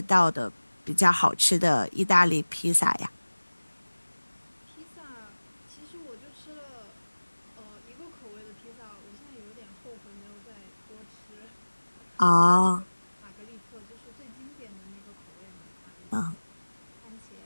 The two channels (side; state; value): both; inverted; correlation -1.00